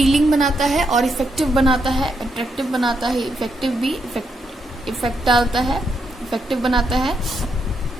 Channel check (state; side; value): normal; both; correlation 0.79